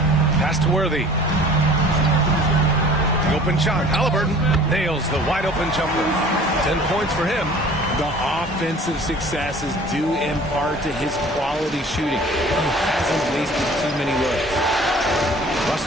Pass to Worthy. The open shot. Halliburton nails the wide open jumper. 10 points for him. The offensive success is due in part to his quality shooting. He hasn't wasted too many looks.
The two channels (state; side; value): normal; both; correlation 0.48